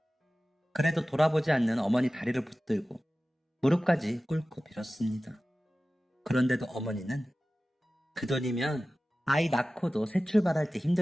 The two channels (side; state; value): both; normal; correlation 0.96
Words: 그래도 돌아보지 않는 어머니 다리를 붙들고 무릎까지 꿇고 빌었습니다. 그런데도 어머니는 그 돈이면 아이 낳고도 새 출발할 때